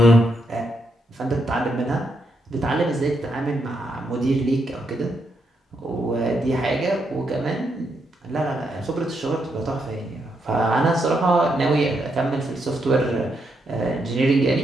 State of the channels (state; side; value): normal; both; correlation 0.79